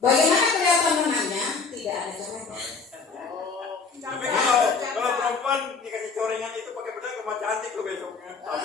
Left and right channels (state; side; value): quieter; right; 4.8 dB